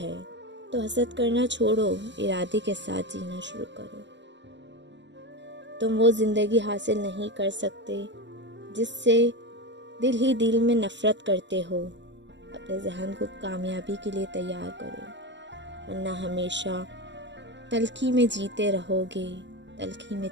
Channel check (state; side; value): late; left; 0.53 ms